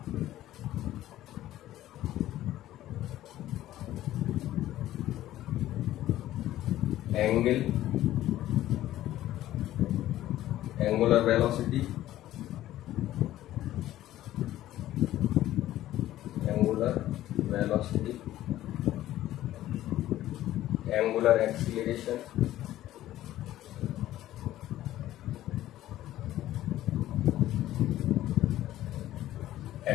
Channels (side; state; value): right; quieter; 14.0 dB